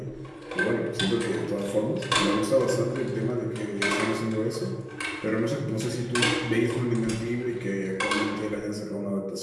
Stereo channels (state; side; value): identical; both; correlation 1.00